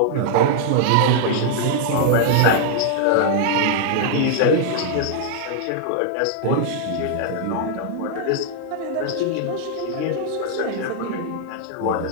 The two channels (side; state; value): both; different; correlation -0.01